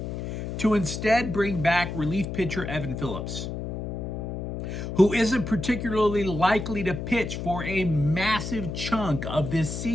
to instead bring back relief pitcher Evan Phillips, who isn't particularly likely to pitch for a massive chunk of this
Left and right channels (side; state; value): left; noise; hum, 5 dB below the sound